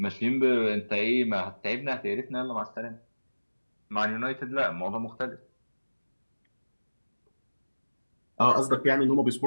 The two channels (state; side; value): inverted; both; correlation -1.00